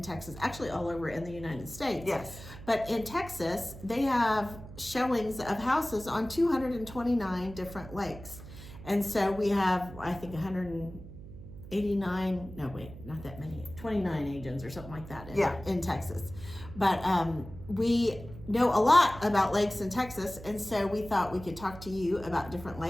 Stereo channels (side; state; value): right; noise; hum, 14 dB below the sound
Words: Texas, actually all over in the United States. Yes. But in Texas, they have showings of houses on 229 different lakes. And so we have, I think, 189, no wait, not that many, 29 agents or something like that in Texas. But we know a lot about lakes in Texas, and so we thought we could talk to you about different